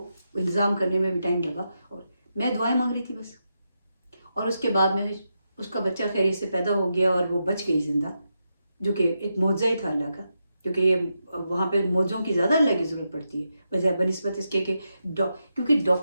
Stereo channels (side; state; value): both; inverted; correlation -0.86